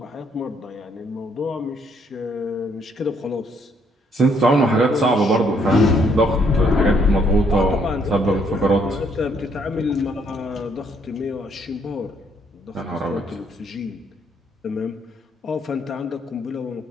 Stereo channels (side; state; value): both; normal; correlation 0.69